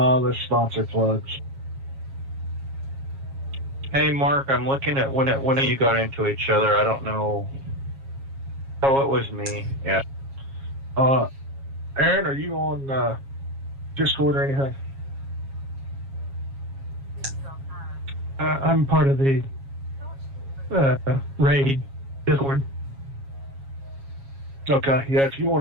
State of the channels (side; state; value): left; late; 7.3 ms